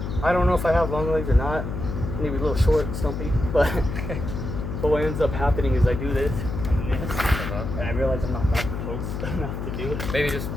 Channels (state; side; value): noise; left; hum, 5 dB below the sound